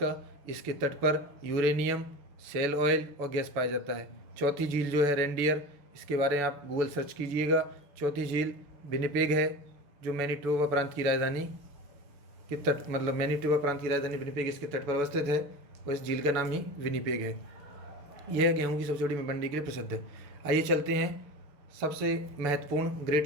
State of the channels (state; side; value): late; left; 6.9 ms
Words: इसके तट पर यूरेनियम, सेल ऑयल और गैस पाया जाता है। चौथी झील जो है रेनडियर, इसके बारे में आप गूगल सर्च कीजिएगा। चौथी झील विनिपेग है, जो मैनीटोबा प्रांत की राजधानी के तट, मतलब मैनीटोबा प्रांत की राजधानी विनिपेग इसके तट पर अवस्थित है, और इस झील का नाम ही विनिपेग है। यह गेहूं की सबसे बड़ी मंडी के लिए प्रसिद्ध है। आइए चलते हैं सबसे महत्वपूर्ण